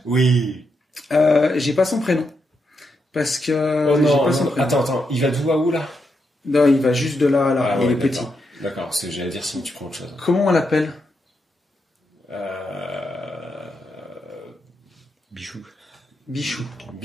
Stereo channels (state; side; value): normal; both; correlation 0.82